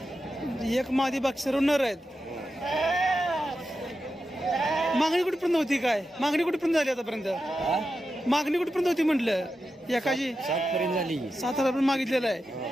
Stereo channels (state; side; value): normal; both; correlation 0.90